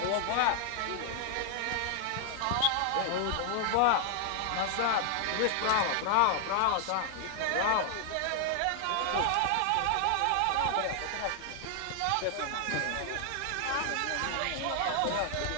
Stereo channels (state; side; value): different; both; correlation 0.00